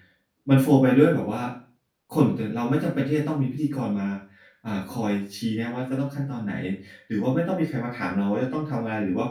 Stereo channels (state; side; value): identical; both; correlation 1.00